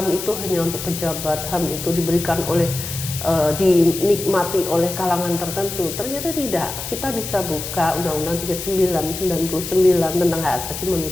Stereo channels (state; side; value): noise; left; hiss, 7 dB below the sound